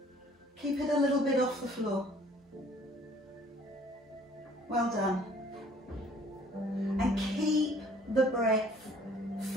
Keep it a little bit off the floor. Well done. And keep the breath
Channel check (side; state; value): both; normal; correlation 0.56